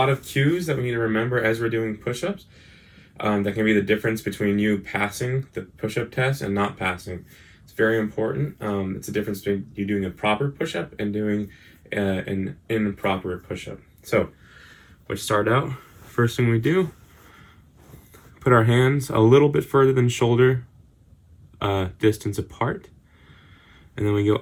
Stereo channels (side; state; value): both; identical; correlation 1.00